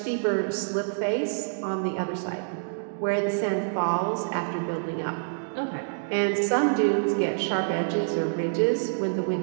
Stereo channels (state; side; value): silent; left; digital silence